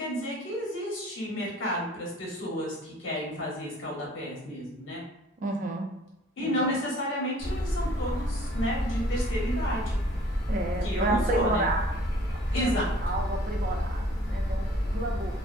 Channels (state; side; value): normal; both; correlation 0.55